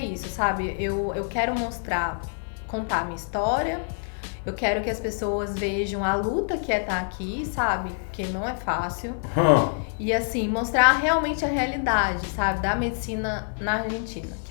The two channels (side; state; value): right; silent; 59 dB below the other